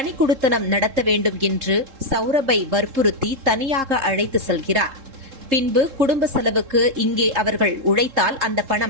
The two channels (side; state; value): left; late; 3.7 ms